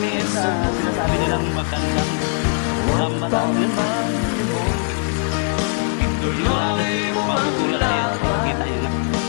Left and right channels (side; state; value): right; silent; 58 dB below the other